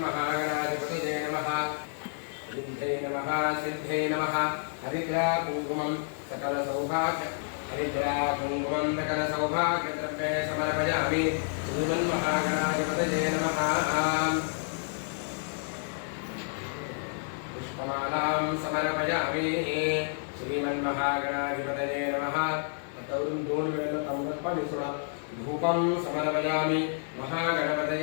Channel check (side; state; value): right; silent; 56 dB below the other